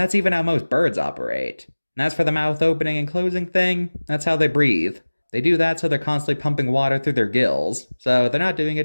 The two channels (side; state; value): both; inverted; correlation -1.00